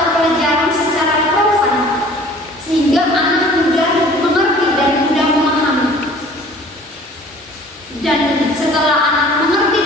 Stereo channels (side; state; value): both; normal; correlation 0.49